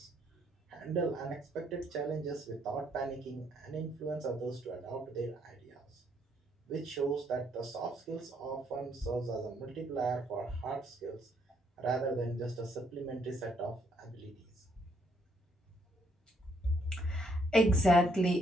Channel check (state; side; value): normal; both; correlation 0.70